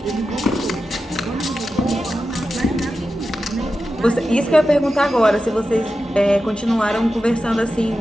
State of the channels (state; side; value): normal; both; correlation 0.91